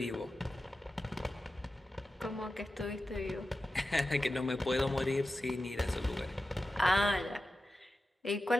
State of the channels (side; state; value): both; normal; correlation 0.93